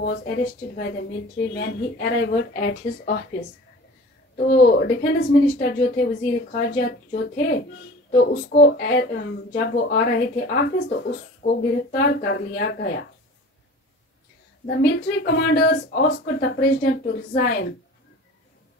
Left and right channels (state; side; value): normal; both; correlation 0.41